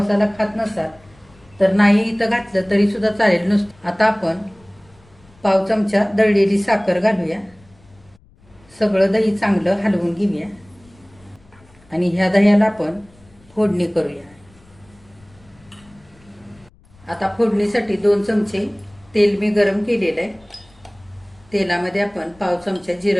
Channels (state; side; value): noise; left; rumble, 29 dB below the sound